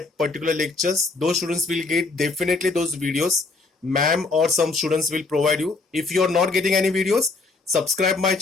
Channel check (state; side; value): quieter; right; 3.7 dB